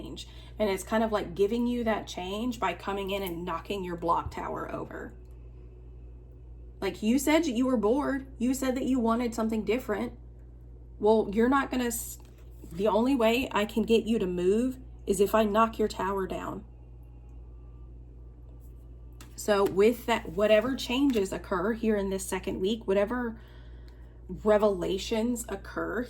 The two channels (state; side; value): identical; both; correlation 1.00